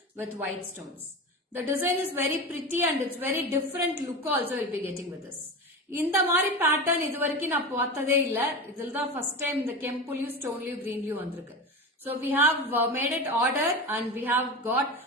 with white stones. The design is very pretty and it's very different look also will be getting with this. இந்த மாதிரி pattern இது வரைக்கும் நான் பார்த்ததே இல்ல. இதில் தான் first time இந்த கெம்புலயும் ஸ்டோன்லயும் கிரீன்லயும் வந்திருக்கு. So we have made it order and we have got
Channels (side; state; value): both; normal; correlation 0.25